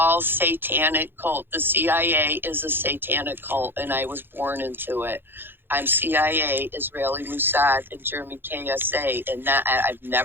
satanic cult. The CIA is a satanic cult, and I was born into it. I'm CIA, Israeli Mossad, and German KSA, and I've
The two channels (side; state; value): left; late; 0.10 ms